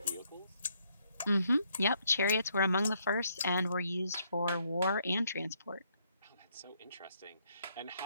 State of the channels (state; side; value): inverted; both; correlation -0.72